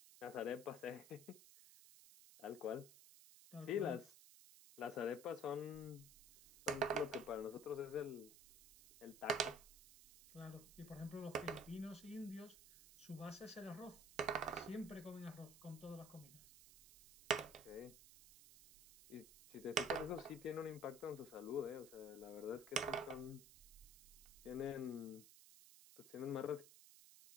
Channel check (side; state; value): right; noise; hiss, 18 dB below the sound